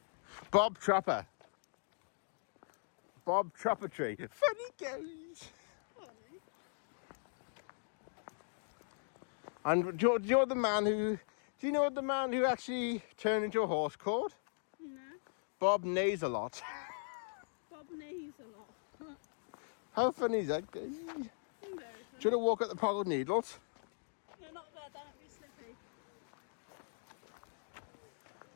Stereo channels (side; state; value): right; silent; digital silence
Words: Bob Trapper. Bob Tree. Funny goes. Funny. And do you know the man who? Do you know the man who actually turned into a horse called? No. Bob neighs a lot. Bob neighs a lot. How funny is that? Do Very you funny. want to walk at the Pogled Needles? No, not there, don't be slippy.